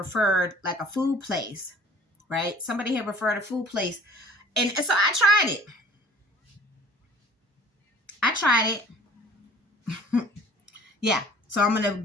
like a food place, right? Somebody had referred a food place, and so I tried it. Yeah, so I'm gonna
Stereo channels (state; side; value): normal; both; correlation 0.50